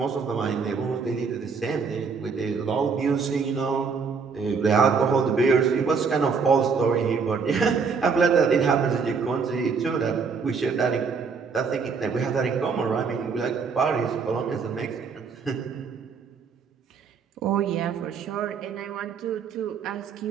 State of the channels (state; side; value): quieter; left; 5.4 dB